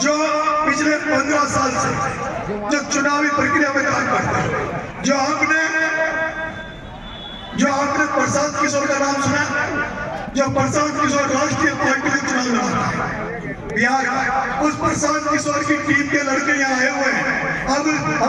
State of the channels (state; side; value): identical; both; correlation 1.00